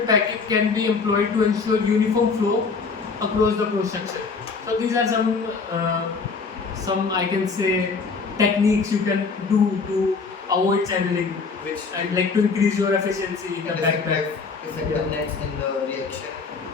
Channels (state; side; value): quieter; right; 4.8 dB